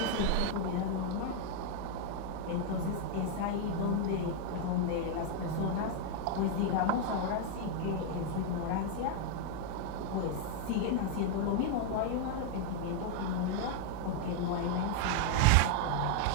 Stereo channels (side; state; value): both; different; correlation 0.00